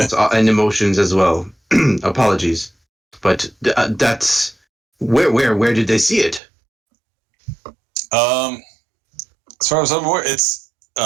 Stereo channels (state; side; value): drops out; left; at 6.4 s